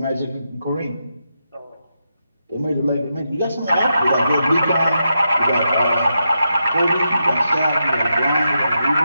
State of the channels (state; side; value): inverted; both; correlation -0.85